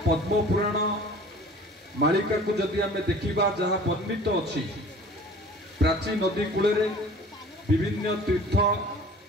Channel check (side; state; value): both; normal; correlation 0.46